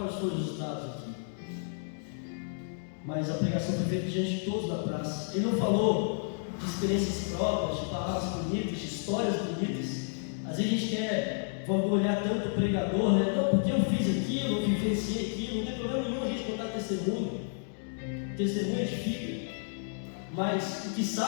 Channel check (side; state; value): right; silent; digital silence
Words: foram os resultados aqui. Mas a pregação foi feita diante de todos da praça. Ele não falou de experiências próprias, de palavras bonitas, de histórias bonitas. Às vezes a gente quer vangloriar tanto o pregador, né? Não, porque eu fiz aquilo, eu vivenciei aquilo, não tem problema nenhum a gente contar testemunho. O testemunho edifica, mas o que